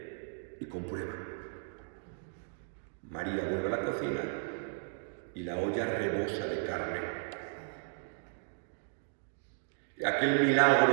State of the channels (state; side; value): silent; left; digital silence